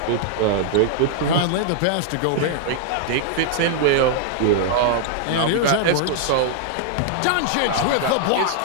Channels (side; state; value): both; different; correlation -0.01